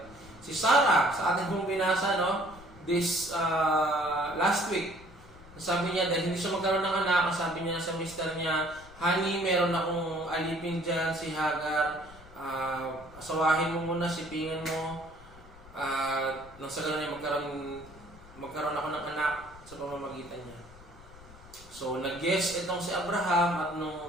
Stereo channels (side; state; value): left; noise; rumble, 20 dB below the sound